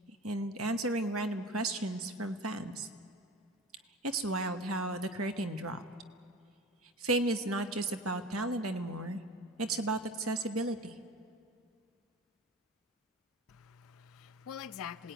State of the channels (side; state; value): both; normal; correlation 0.36